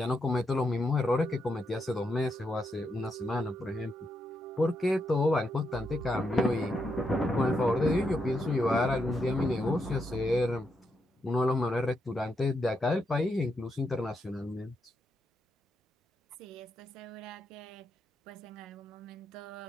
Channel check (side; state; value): both; normal; correlation 0.81